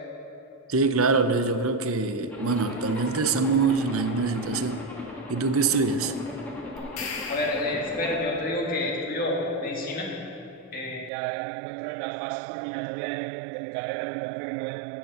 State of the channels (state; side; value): drops out; left; at 11.1 s